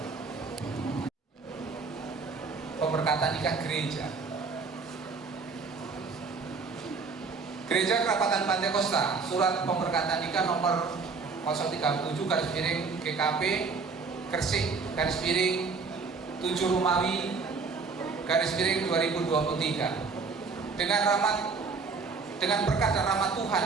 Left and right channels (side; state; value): left; quieter; 4.7 dB